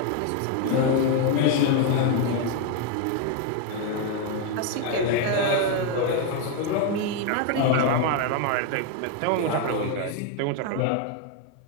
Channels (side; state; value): both; different; correlation 0.01